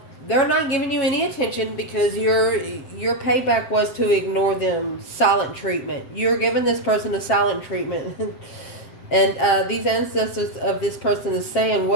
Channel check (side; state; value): right; late; 7.7 ms